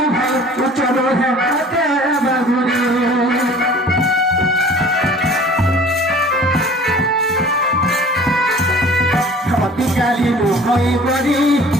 ভাই উচ্চনো হাতে বাগুলি অতিকালী নুহই গরি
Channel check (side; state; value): both; normal; correlation 0.47